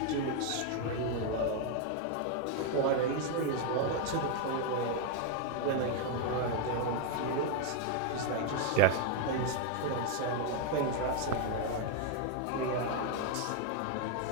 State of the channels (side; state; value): both; different; correlation 0.01